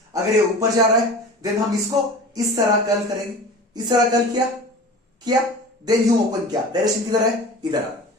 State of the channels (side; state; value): both; normal; correlation 0.37